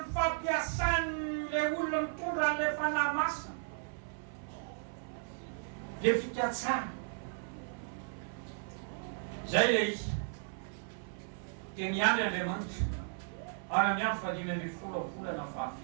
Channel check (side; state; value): left; silent; 54 dB below the other